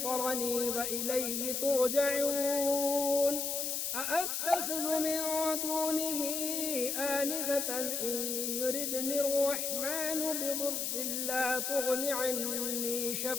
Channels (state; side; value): noise; left; hiss, 1 dB below the sound